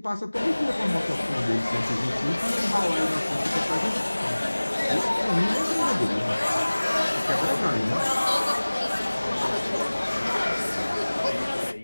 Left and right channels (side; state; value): both; inverted; correlation -1.00